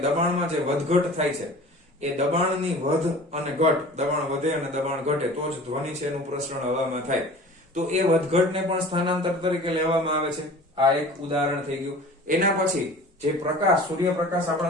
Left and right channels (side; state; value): both; normal; correlation 0.42